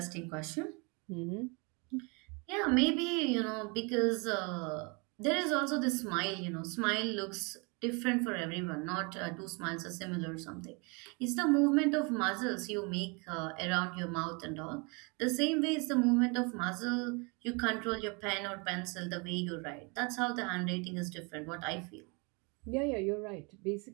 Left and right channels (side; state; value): left; quieter; 31.0 dB